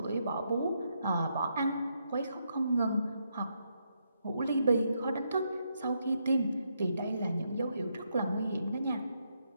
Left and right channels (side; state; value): both; inverted; correlation -0.79